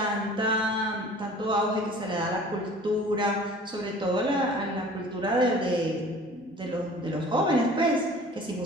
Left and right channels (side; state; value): both; normal; correlation 0.46